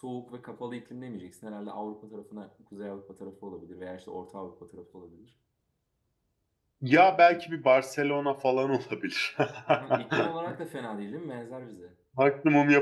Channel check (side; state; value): both; identical; correlation 1.00